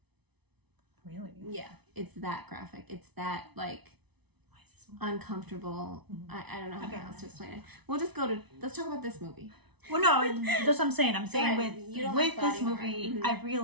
Really? Yeah, it's that graphic. It's that like Why is this uncomfortable. Mm-hmm. I don't know how else to explain it. We'll just let's talk about this movie. Well, no, that's what I'm saying. I'm saying Right. You don't with like this body horror. movie, Mhm. I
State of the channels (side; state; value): left; late; 0.99 ms